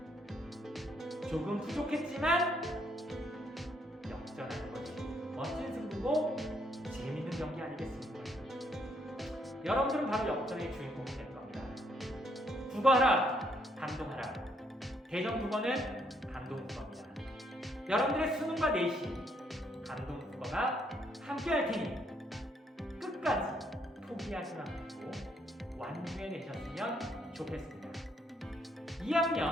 조금 부족했지만 역전하는 것이 멋진 승부고 재밌는 경기 아니겠습니까? 여러분들은 바로 역전의 주인공이 될 겁니다. 국어하라, 감동하라. 대전국어는 감동국어입니다. 여러분들의 수능과 내신, 감동국어가 함께 할 테니 끝까지 포기하지 않고 완주해 내셨으면 좋겠습니다.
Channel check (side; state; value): both; normal; correlation 0.72